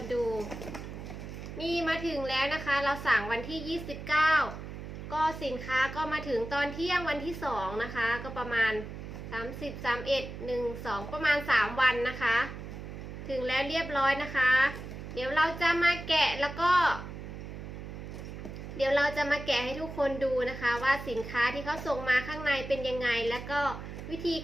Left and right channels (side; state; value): right; noise; hum, 10 dB below the sound